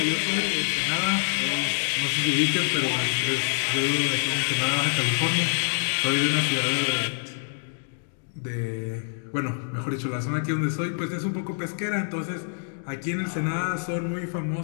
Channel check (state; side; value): silent; right; digital silence